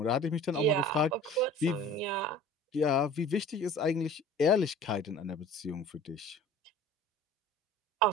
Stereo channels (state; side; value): normal; both; correlation 0.44